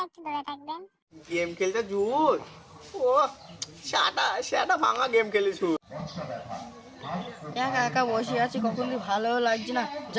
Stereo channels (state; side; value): identical; both; correlation 1.00